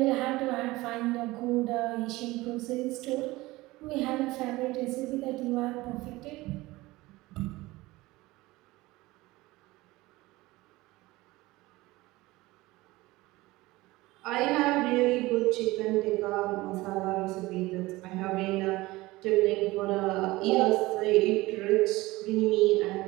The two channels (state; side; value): quieter; left; 19.9 dB